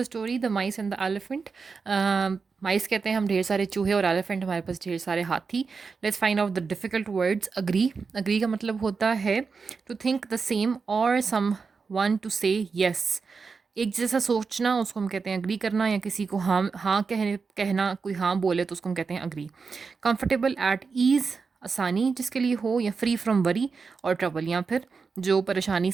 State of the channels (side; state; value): left; quieter; 4.9 dB